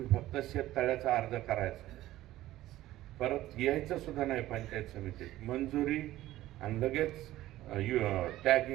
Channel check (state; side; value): quieter; left; 15.3 dB